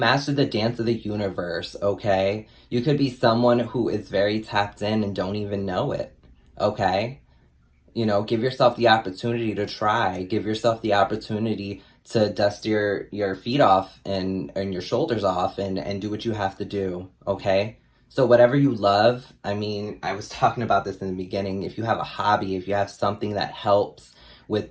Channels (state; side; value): identical; both; correlation 1.00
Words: the dance of the universe. Okay. You could be someone who is very tapped in and don't even know it. Okay. You know, give yourself the opportunity to try. Give yourself the opportunity to dust your feet off and your shoulders off and do what you have to do. Okay. So whatever you love, I mean, I was talking about this in the beginning. If you have a hobby, if you have something that helps